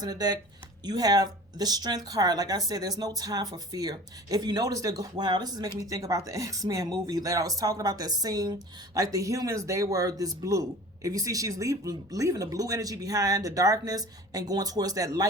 in the deck, you have the Strength card. Like I said, there's no time for fear. If you notice, wow, this is making me think about the X-Men movie that I was talking about, that scene. Like the humans, they were this blue. If you see, she's leaving the blue energy behind, the darkness, and going towards that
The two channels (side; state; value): both; normal; correlation 0.42